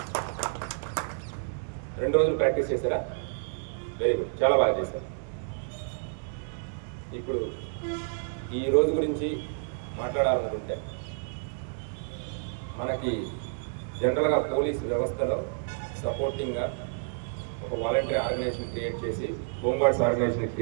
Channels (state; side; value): silent; left; digital silence